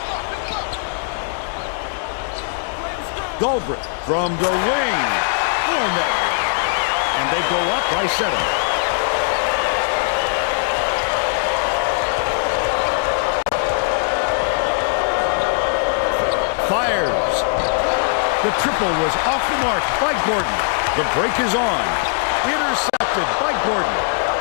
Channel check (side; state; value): right; silent; digital silence